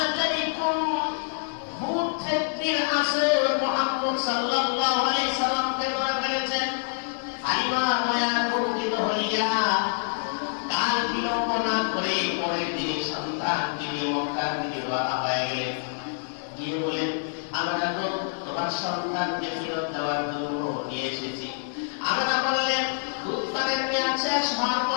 জানি কোন ভূত চেত্রীর আসর মুহাম্মদ সাল্লাল্লাহু আলাইহি সাল্লামকে ধরে ফেলেছেন। হালিমা আতঙ্কিত হইয়া কাল বিলম্ব না করে পরের দিন সন্তানকে নিয়ে মক্কার দিকে রওনা হয়ে গেলেন। গিয়ে বলেন, আমরা তো তোমার সন্তানকে ফেরত দেওয়ার জন্য নিয়ে এসেছি। আমরা বললেন, দুধ পানের মেয়াদ শেষ হওয়ার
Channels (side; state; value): right; silent; 60 dB below the other